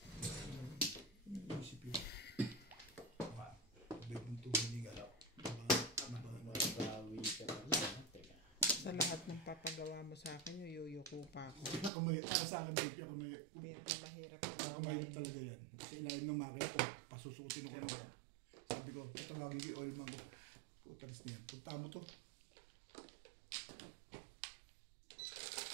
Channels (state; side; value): drops out; left; at 11.9 s